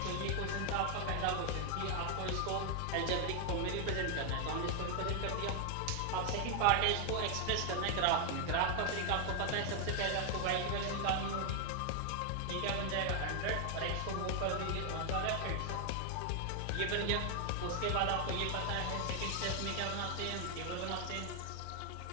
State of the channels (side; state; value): both; different; correlation 0.00